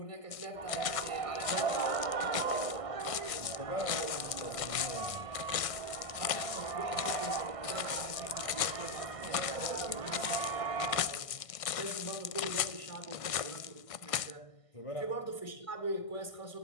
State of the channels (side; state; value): right; late; 1.6 ms